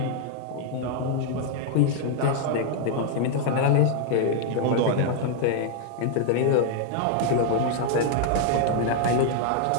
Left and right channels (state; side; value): different; both; correlation 0.00